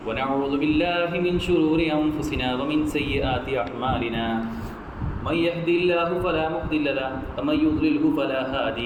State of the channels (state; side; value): identical; both; correlation 1.00